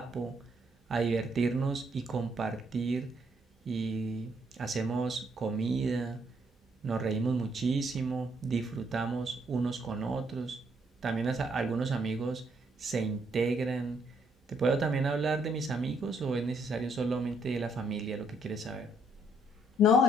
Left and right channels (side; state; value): both; normal; correlation 0.71